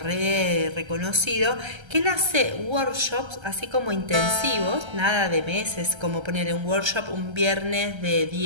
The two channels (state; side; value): late; left; 1.3 ms